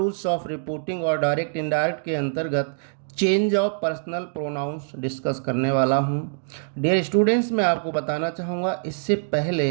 ऑफ रिपोर्टिंग और direct indirect के अंतर्गत change of personal pronouns discuss करने वाला हूं। डियर स्टूडेंट्स, मैं आपको बताना चाहूँगा, इससे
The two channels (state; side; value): silent; left; digital silence